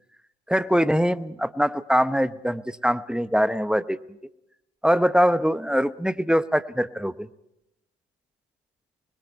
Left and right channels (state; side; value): normal; both; correlation 0.97